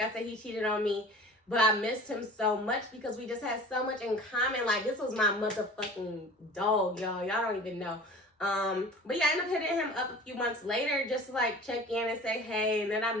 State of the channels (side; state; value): both; normal; correlation 0.41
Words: I said, he cheated on me. But I missed him so much because we just had so much in common. Like, this was my motherfucking dog, y'all. Y'all don't even know. But yeah, I ended up hitting him up a few months later just to like check in and say hey. And then I